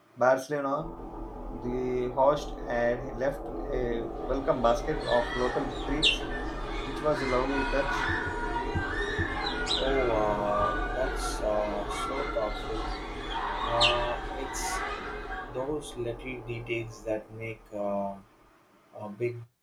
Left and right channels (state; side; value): identical; both; correlation 1.00